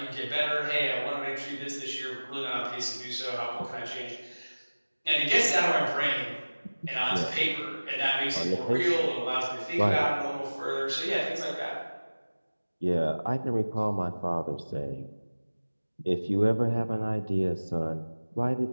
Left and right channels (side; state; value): both; inverted; correlation -1.00